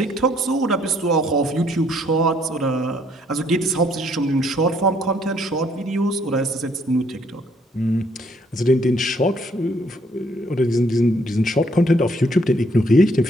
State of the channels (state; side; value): normal; both; correlation 0.67